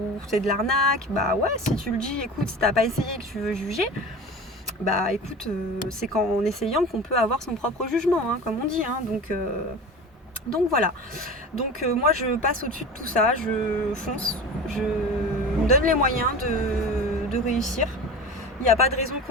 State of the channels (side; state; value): both; normal; correlation 0.34